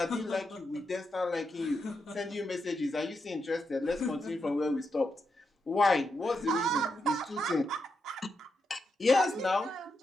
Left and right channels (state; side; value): normal; both; correlation 0.84